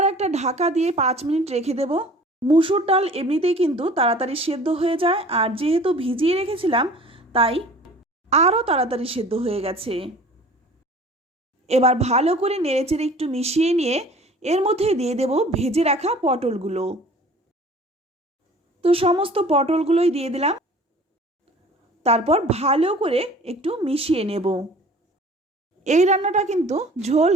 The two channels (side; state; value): both; normal; correlation 0.47